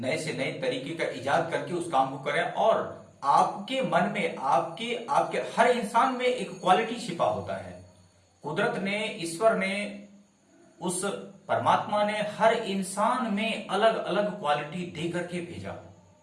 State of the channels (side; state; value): both; identical; correlation 1.00